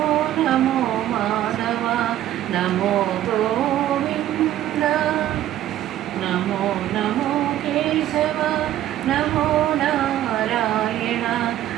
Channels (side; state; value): left; quieter; 12.8 dB